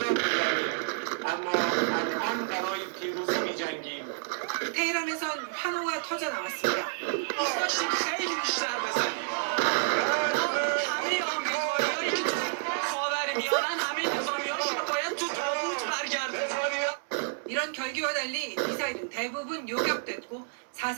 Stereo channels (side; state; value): left; silent; digital silence